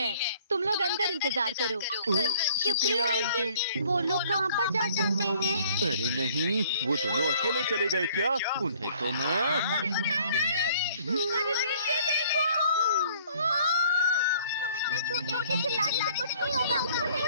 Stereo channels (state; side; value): inverted; both; correlation -0.57